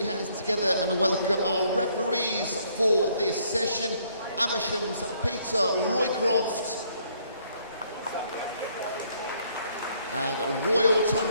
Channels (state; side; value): inverted; both; correlation -0.67